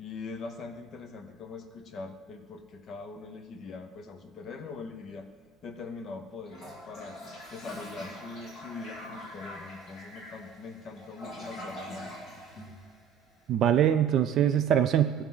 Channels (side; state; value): left; quieter; 7.2 dB